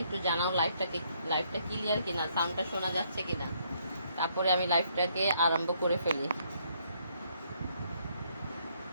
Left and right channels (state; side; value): inverted; both; correlation -0.70